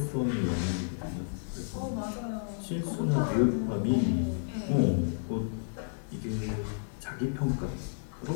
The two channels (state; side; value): silent; right; digital silence